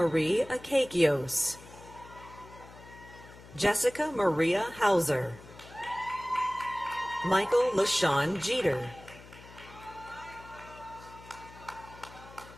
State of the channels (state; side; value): noise; left; hum, 19 dB below the sound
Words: Akakios, Jessica Maria Hauser, Michael LaShawn Jeter,